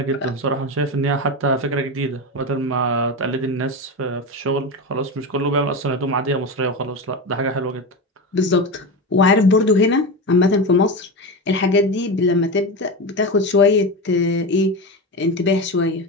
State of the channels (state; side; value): normal; both; correlation 0.20